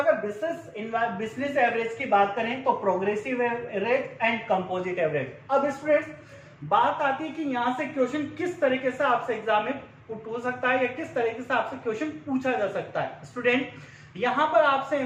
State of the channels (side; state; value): both; identical; correlation 1.00